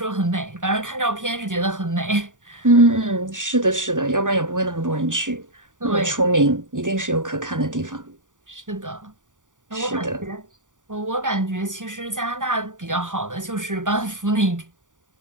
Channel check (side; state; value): left; late; 0.87 ms